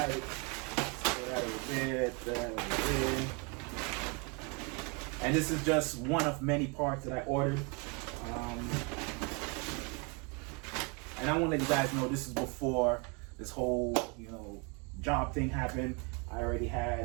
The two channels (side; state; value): left; quieter; 32.3 dB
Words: And this is just one of many parts that I ordered. And I want to let you guys know, this is before this whole job thing happened. I already